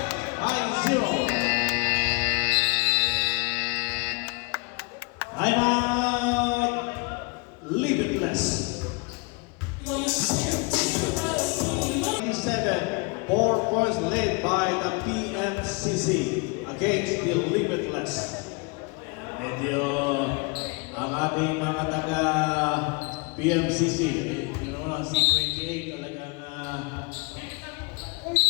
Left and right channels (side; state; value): right; quieter; 29.9 dB